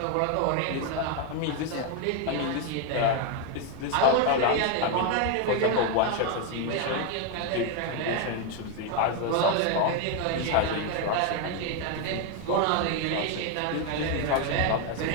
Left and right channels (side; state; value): both; different; correlation 0.01